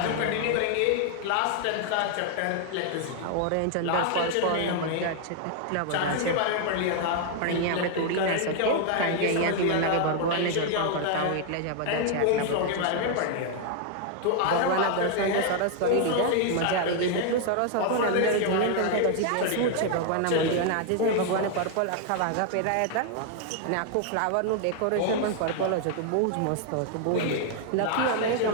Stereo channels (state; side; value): different; both; correlation 0.00